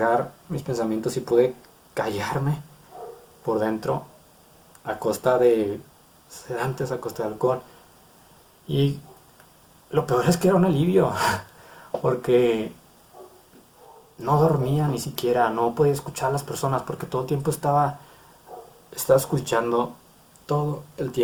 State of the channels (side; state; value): both; identical; correlation 1.00